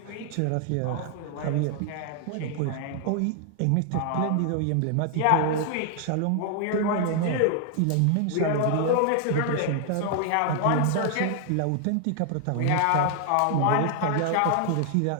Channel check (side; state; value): both; different; correlation 0.00